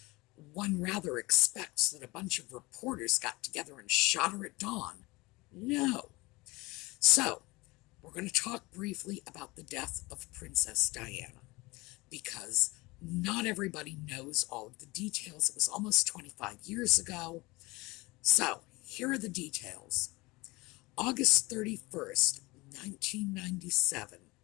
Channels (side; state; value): right; quieter; 22.8 dB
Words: one rather expects that a bunch of reporters got together and shot her at dawn. No. So, we're going to talk briefly about the death of Princess Diana, because not everybody knows all of the details. It was almost 25 years ago. So, here are the details. August 31st, 1997,